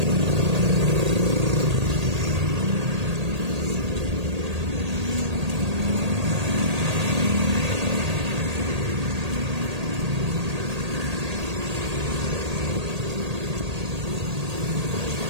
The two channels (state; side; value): late; left; 1.8 ms